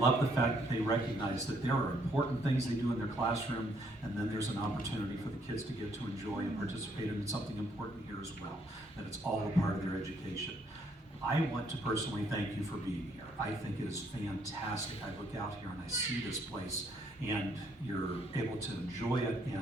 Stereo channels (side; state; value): both; normal; correlation 0.69